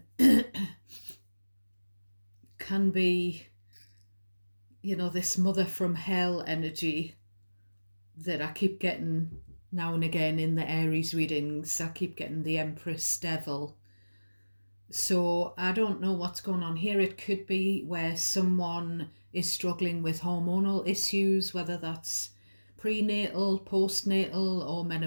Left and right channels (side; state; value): both; inverted; correlation -1.00